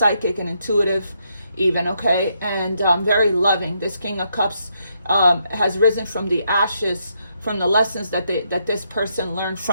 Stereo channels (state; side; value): inverted; both; correlation -0.77